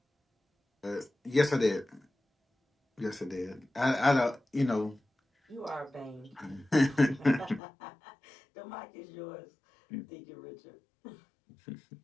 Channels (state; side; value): drops out; right; at 7.6 s